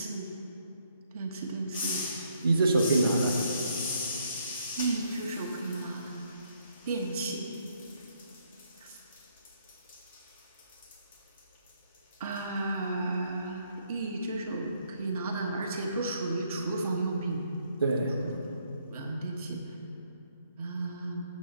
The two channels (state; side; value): inverted; both; correlation -0.70